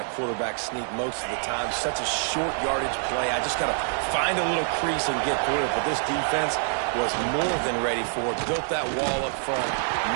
quarterback sneak most of the time. Such a short yardage play. I just got to find a little crease and get through it. But this defense was more than ready for it. Built that wall up front.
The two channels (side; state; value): left; silent; 61 dB below the other